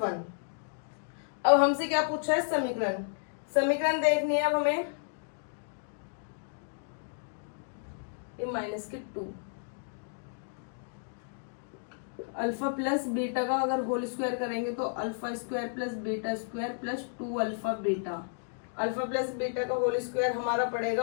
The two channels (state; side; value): silent; right; digital silence